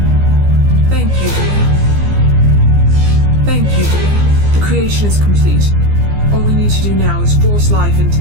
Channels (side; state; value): left; late; 15 ms